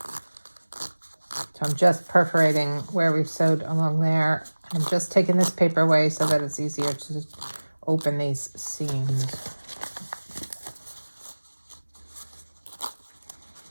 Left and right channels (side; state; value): both; inverted; correlation -1.00